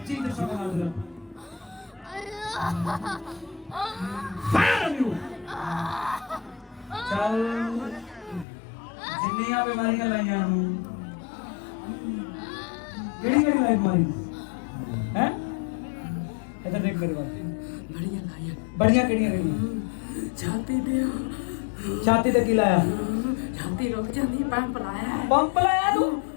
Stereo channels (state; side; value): drops out; right; at 8.5 s